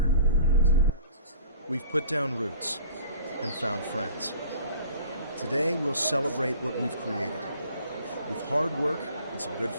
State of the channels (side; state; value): both; inverted; correlation -0.46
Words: We've put down roots and found friends. Today we'll celebrate what we've created. With hard work and some good